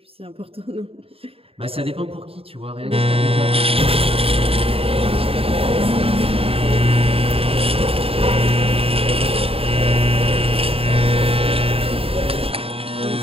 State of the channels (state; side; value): late; left; 0.27 ms